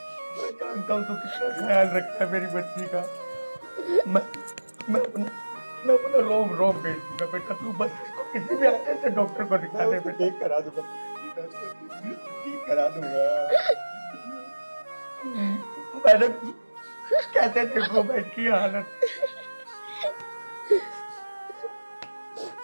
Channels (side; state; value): both; inverted; correlation -1.00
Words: हूँ तू कितना ख्याल रखता है मेरी बच्ची का। मैं अपना रोम बेच दूंगा बेटा, तू बस इसको किसी भी अच्छे से डॉक्टर को दिखा दे बेटा। ठीक करा दूंगा, ठीक करा दूंगा। मैंने कैसे देखो बैठ की हालत।